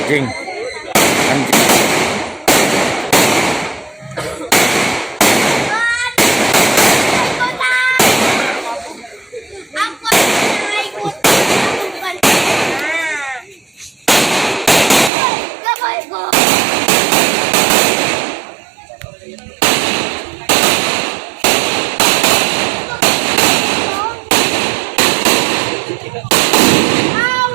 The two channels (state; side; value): drops out; left; at 15.1 s